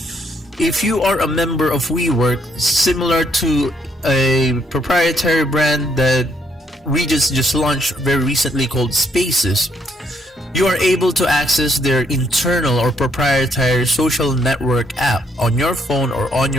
If you are a member of WeWork, similar to a proprietary brand that Regis just launched very recently called Spaces, you are able to access their internal or proprietary social network app on your phone or on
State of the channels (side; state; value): both; normal; correlation 0.72